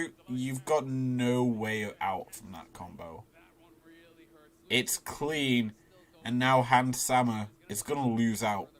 You've got no way out from that combo. It's clean. And now Hans Sammer is going to lose out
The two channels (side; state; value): both; identical; correlation 1.00